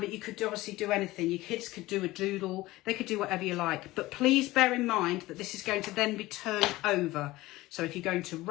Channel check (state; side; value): quieter; right; 18.5 dB